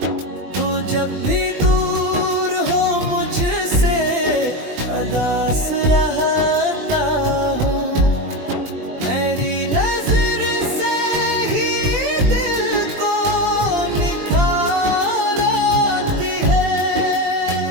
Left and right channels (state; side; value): late; left; 20 ms